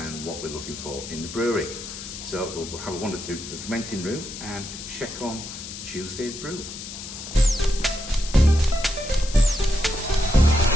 what we're looking for in the brewery. So we'll have a wander through to the fermenting room and check on Tuesday's brew.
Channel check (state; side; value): noise; left; hiss, 10 dB below the sound